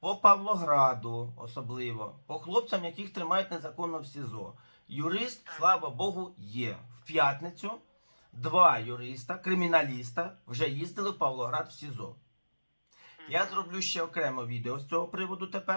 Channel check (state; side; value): inverted; both; correlation -1.00